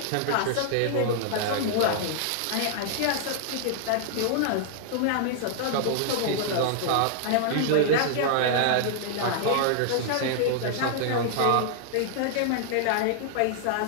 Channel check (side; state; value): both; different; correlation -0.01